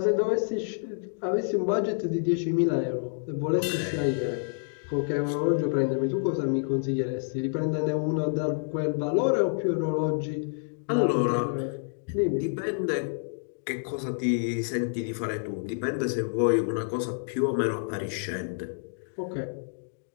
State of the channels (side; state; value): right; silent; digital silence